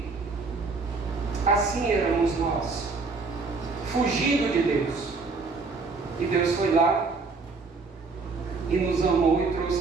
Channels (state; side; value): quieter; left; 4.2 dB